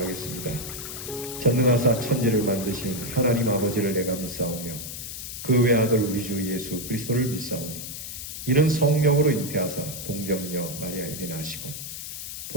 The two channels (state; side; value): noise; left; hiss, 8 dB below the sound